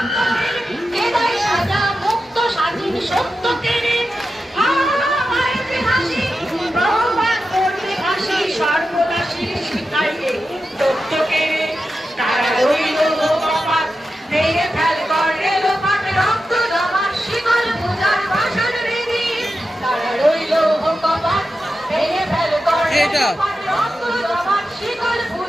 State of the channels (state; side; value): normal; both; correlation 0.91